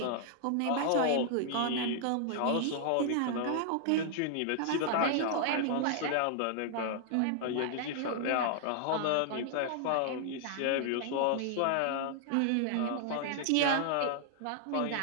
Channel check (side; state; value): both; different; correlation 0.00